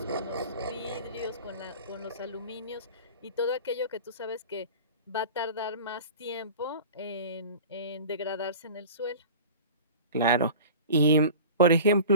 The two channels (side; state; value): both; inverted; correlation -0.38